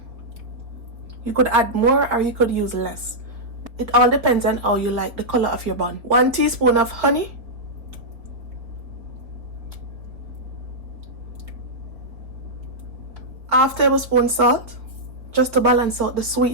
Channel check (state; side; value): late; left; 4.0 ms